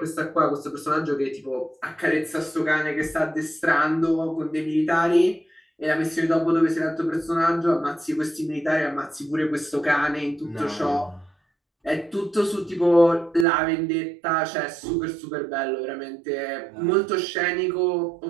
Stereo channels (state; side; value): drops out; left; at 13.5 s